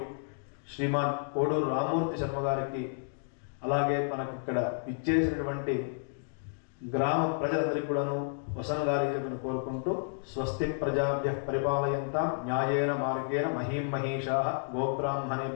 శ్రీమాన్ కోడూరు రామ్మూర్తి శర్మ గారికి అలాగే మనకి ఇక్కడ ఇచ్చేసినటువంటి గ్రామ ప్రజలందరికీ కూడాను వసంగాలి చెప్పని కోరుకుంటూ స్వస్తి ప్రజాభ్యః పరిపాలయంతాం న్యాయేన మార్గేణ మహీం మహీషాః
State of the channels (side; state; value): right; silent; digital silence